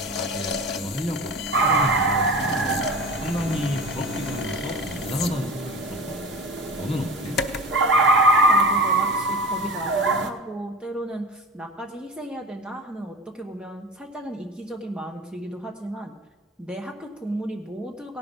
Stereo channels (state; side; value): normal; both; correlation 0.33